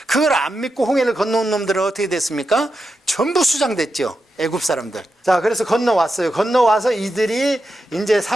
그걸 안 믿고 홍해를 건너온 놈들은 어떻게 됐습니까? 전부 수장됐죠. 애굽 사람들. 자, 그래서 건너왔어요. 건너와서 이들이 이제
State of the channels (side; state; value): both; normal; correlation 0.88